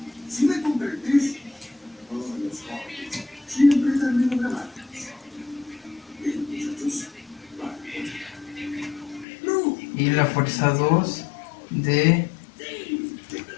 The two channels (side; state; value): right; drops out; at 9.2 s